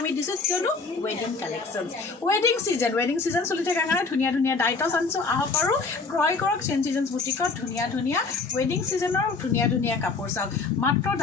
দিছোঁ কিয়নো ৱেডিং কালেকশ্যন ৱেডিং ছিজন চলি থকাৰ কাৰণে ধুনীয়া ধুনীয়া ডাইটছ আনিছোঁ আহক আৰু ক্ৰয় কৰক চেঞ্জ চিজন বুটিকত ধুনীয়া ধুনীয়া ৱেডিং ছিজনৰ ধুনীয়া ধুনীয়া কাপোৰ চাওক মাত্ৰ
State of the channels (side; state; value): right; quieter; 4.3 dB